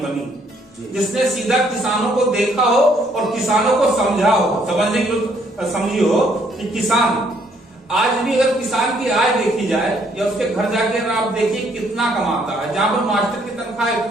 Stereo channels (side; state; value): both; normal; correlation 0.67